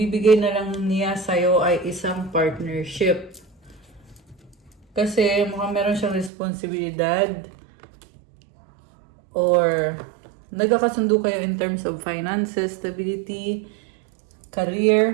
na lang niya sa'yo ay isang partnership. Kasi mukhang meron siyang responsibilidad or nagkakasundo kayo in terms of finances, stability,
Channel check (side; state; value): left; drops out; at 6.3 s